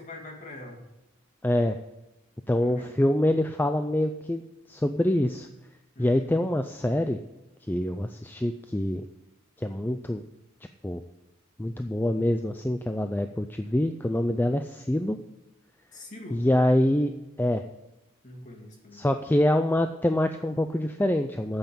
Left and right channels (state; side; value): normal; both; correlation 0.92